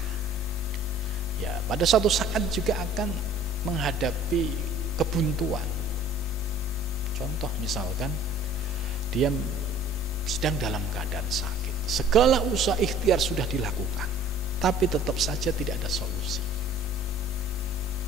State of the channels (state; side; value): normal; both; correlation 0.50